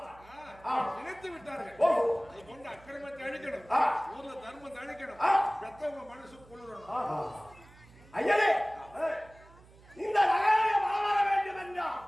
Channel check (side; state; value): right; noise; hum, 24 dB below the sound